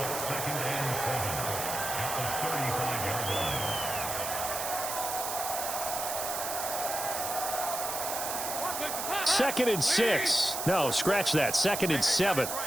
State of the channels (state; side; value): noise; right; hiss, 4 dB below the sound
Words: Second and 6. No, scratch that. 2nd and 7.